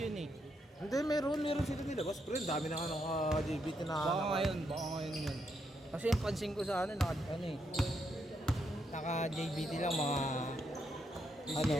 eh. Hindi, meron sila nilabas. Pre, dami na nga ng JBT na Baka ngayon yun. Kasi yung pansin ko sa ano, ano eh. Naka JBT lang mga ano,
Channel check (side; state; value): both; normal; correlation 0.79